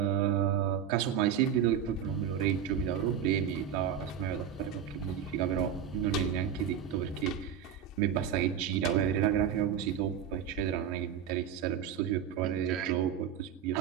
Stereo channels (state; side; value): quieter; left; 8.6 dB